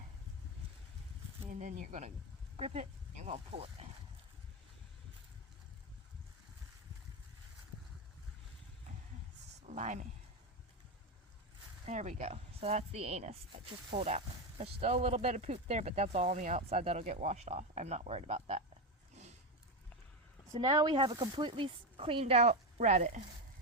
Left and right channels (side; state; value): both; normal; correlation 0.11